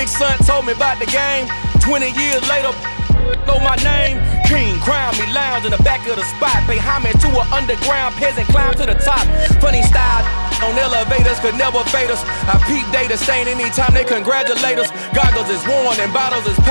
son told me about the game. 20 years later, know my name. King, crown me, lounge in the back of the spot. Pay homage to an underground peasant, climb to the top. Funny style on elevators could never fade us. I peep data stain anytime they congratulate us. Goggles is worn and bottles is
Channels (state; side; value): inverted; both; correlation -1.00